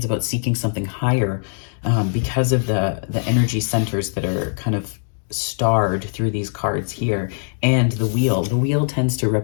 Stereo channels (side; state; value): right; silent; digital silence